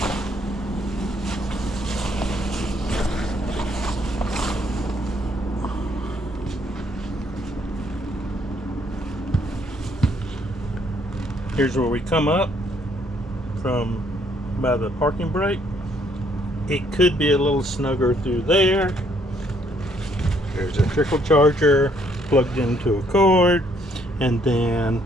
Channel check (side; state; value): both; normal; correlation 0.67